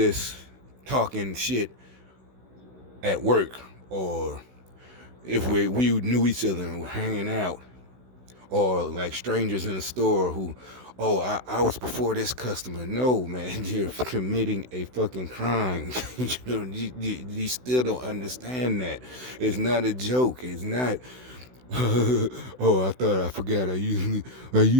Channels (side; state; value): left; late; 16 ms